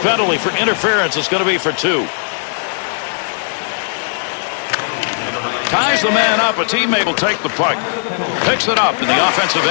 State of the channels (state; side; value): silent; right; digital silence